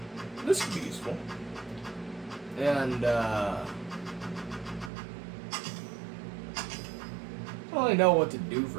This could be useful. And, I don't really know what to do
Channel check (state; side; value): drops out; left; at 4.9 s